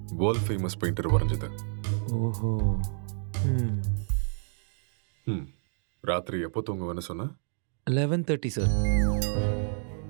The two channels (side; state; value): left; silent; digital silence